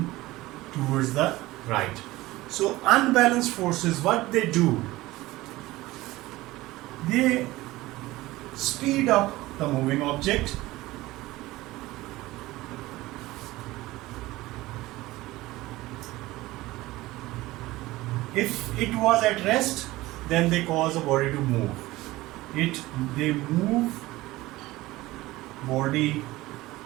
towards the right. So unbalanced forces, what they do? They speed up the moving object. If it was at rest, then they cause a body to move. They move body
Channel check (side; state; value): left; quieter; 18.5 dB